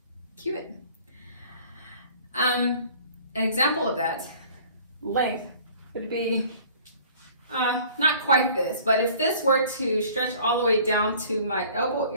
Cubit. An example of that length would be not quite this, but if this were to stretch all the way down to my elbow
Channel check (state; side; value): inverted; both; correlation -0.51